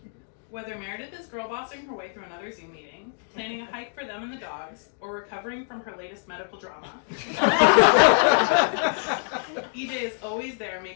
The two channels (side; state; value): right; silent; digital silence